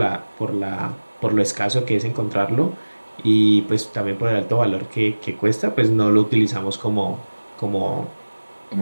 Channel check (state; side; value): inverted; both; correlation -1.00